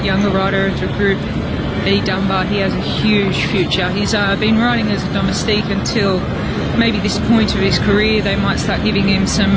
younger rider of the group, E. Dunbar, he has a huge future. He's been riding as a domestique until maybe this point of his career. They might start giving him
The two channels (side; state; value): both; identical; correlation 1.00